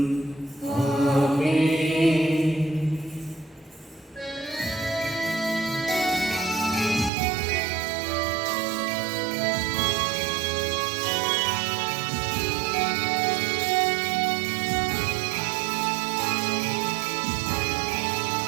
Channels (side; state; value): left; drops out; at 7.1 s